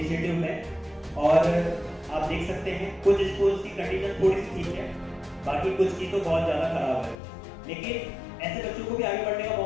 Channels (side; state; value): right; drops out; at 7.2 s